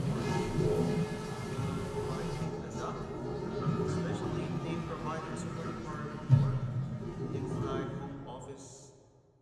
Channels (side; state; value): both; identical; correlation 1.00